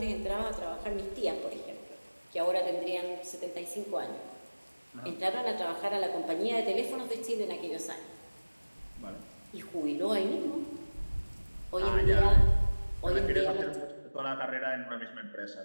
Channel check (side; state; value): both; inverted; correlation -1.00